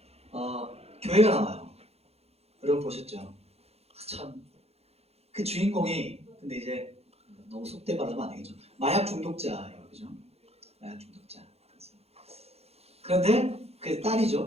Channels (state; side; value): late; left; 0.30 ms